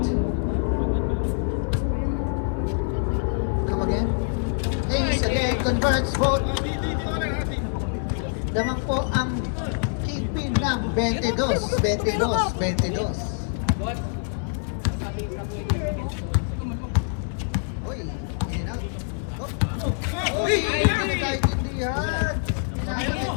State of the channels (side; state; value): right; silent; digital silence